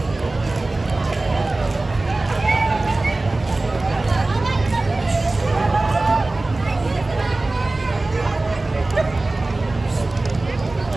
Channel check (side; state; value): left; quieter; 3.0 dB